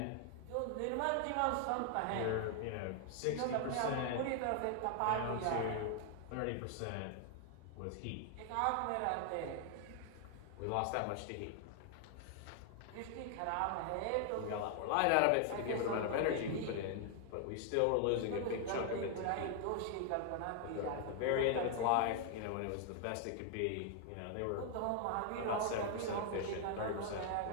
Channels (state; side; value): different; both; correlation 0.00